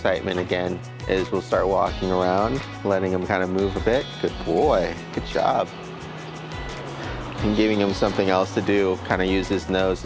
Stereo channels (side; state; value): both; identical; correlation 1.00